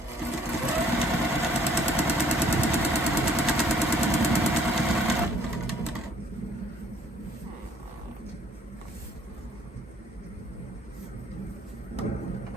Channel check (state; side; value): normal; both; correlation 0.60